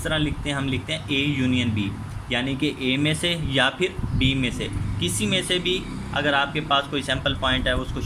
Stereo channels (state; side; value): identical; both; correlation 1.00